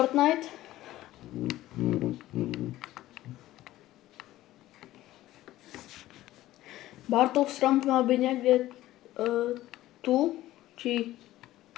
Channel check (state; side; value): quieter; right; 15.4 dB